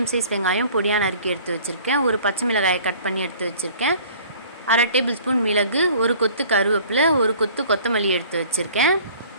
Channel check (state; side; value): inverted; both; correlation -0.50